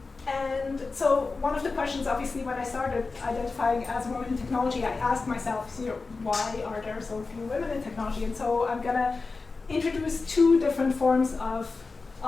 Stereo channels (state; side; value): quieter; right; 4.0 dB